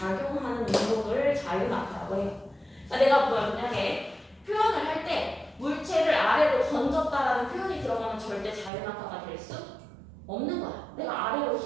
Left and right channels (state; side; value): drops out; left; at 8.7 s